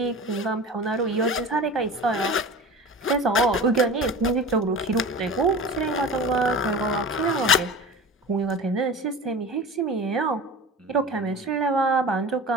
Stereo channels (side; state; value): both; normal; correlation 0.33